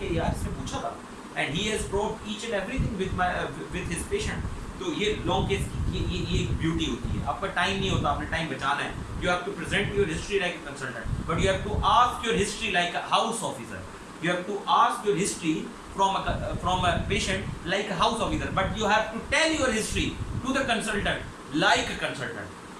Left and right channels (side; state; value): both; identical; correlation 1.00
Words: यार इसने पूछा था and he has proved each and everything with his patient. तो ये लॉन्ग केस की ये ब्यूटी होती है। आपका टाइम नहीं होता, आपने टाइम बचाना है। You have to present your history like a consultant, but you have to ask your history like a house officer. You have to ask your history from a patient like a house officer, but you have to tell your history to the consultant like a consultant,